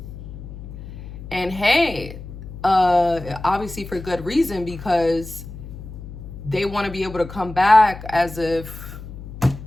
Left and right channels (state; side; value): noise; left; hum, 12 dB below the sound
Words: And hey, obviously for good reason, because they want to be able to come back as if,